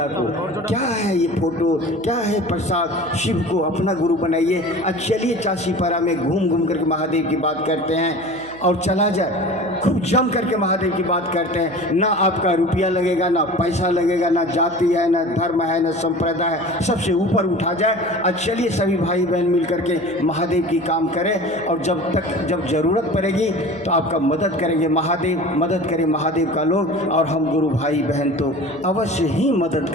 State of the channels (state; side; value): noise; right; hum, 21 dB below the sound